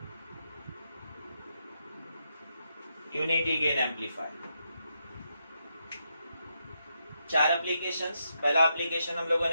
Unity gain amplifier 4 applications. पहला एप्लीकेशन हम लोगों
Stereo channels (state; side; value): inverted; both; correlation -0.82